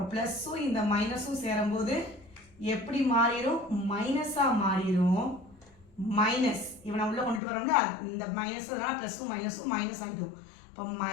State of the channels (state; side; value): drops out; right; at 7.4 s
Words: ப்ளஸ்ஸும் இந்த மைனஸும் சேரும்போது எப்படி மாறிடும்? மைனஸாக மாறிடும். மைனஸ் இவனை உள்ள கொண்டுட்டு வரோம்ல இந்த மைனஸ் ப்ளஸ்ஸும் மைனஸும் மைனஸ் ஆகிடும். இப்போ